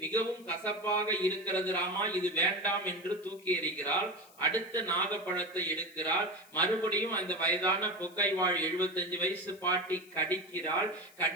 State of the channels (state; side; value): noise; left; hiss, 25 dB below the sound